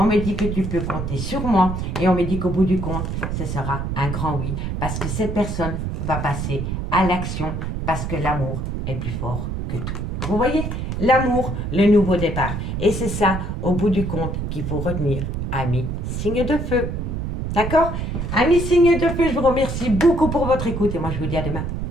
me dit que tu peux compter sur moi et on me dit qu'au bout du compte, ce sera un grand oui parce que cette personne va passer à l'action parce que l'amour est plus fort que tout. Vous voyez? L'amour, le nouveau départ. Et c'est ça, au bout du compte, qu'il faut retenir, amis signe de feu. D'accord? Amis signe de feu, je vous remercie beaucoup pour votre écoute et moi je vous dis à demain.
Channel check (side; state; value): right; noise; rumble, 3 dB below the sound